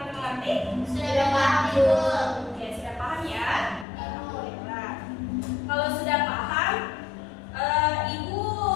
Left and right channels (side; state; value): right; drops out; at 3.9 s